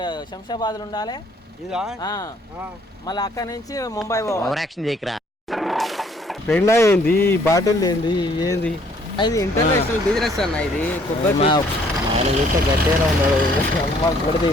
శంషాబాద్లో ఉండాలి ఇదా మళ్ళీ అక్కడి నుంచి ముంబై పోవాలి. పెండా ఏంది బాటిల్ ఏంది ఏంది అది ఇంటర్నేషనల్ బిజినెస్ అన్న ఇది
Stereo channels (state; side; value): normal; both; correlation 0.62